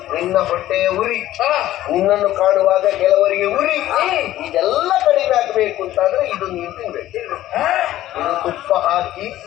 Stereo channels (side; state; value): right; quieter; 14.2 dB